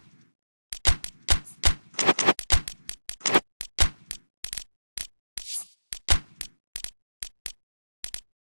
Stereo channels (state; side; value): inverted; both; correlation -1.00